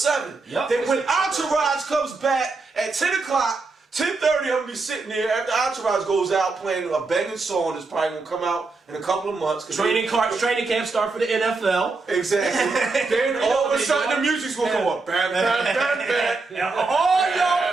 Yep. That when Entourage comes back at 10 o'clock. 10:30, I'm gonna be sitting there after Entourage goes out playing a banging song that's probably gonna come out in a couple of months. Training camp start for the NFL. Exactly. Then all of a sudden the music's gonna go up. Bam, bam, bam, bam. All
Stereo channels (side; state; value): left; quieter; 3.9 dB